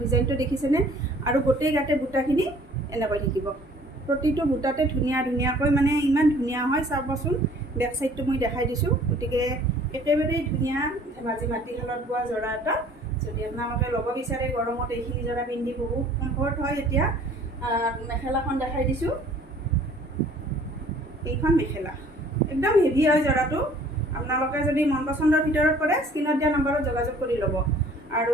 ডিজাইনটো দেখিছেনে আৰু গোটেই গাতে বুটাখিনি এনেকৈ থাকিব প্ৰতিটো বুটাতে ধুনীয়াকৈ মানে ইমান ধুনীয়া হয় চাবচোন বেক চাইডটো মই দেখাই দিছোঁ গতিকে একেবাৰেই ধুনীয়া ধেমাজি মাটিশালত বোৱা যোৰা এটা যদি আপোনালোকে ল'ব বিচাৰে গৰমত এইখিনি যোৰা পিন্ধি বহুত কমফৰ্ট হয় এতিয়া মেখেলাখন দেখাই দিছোঁ এইখন মেখেলা একদম হেভি হয় যোৰাটো আপোনালোকে যদি মন পচন্দৰ ভিতৰত কৰে স্ক্ৰীনত দিয়া নম্বৰত যোগাযোগ কৰি ল'ব আৰু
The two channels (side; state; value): both; normal; correlation 0.54